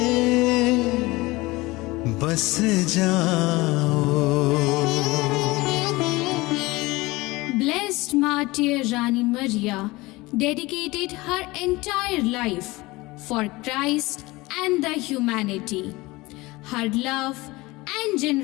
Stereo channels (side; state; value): right; quieter; 21.5 dB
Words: बस जाओ। Blessed Martyr Rani Maria dedicated her entire life for Christ and the humanity. Her love and